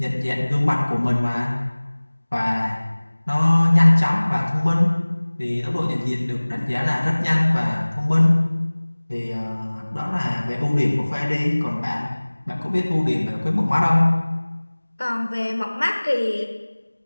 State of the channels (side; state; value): both; inverted; correlation -1.00